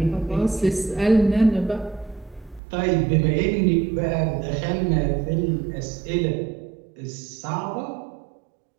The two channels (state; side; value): drops out; left; at 2.6 s